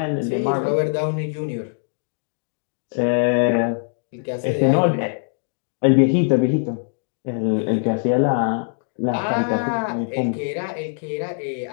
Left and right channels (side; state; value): right; silent; digital silence